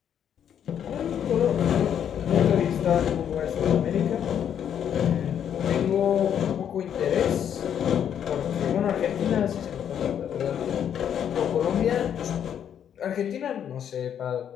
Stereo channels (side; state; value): right; quieter; 9.0 dB